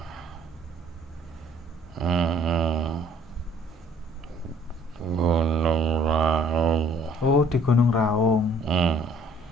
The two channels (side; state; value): both; normal; correlation 0.58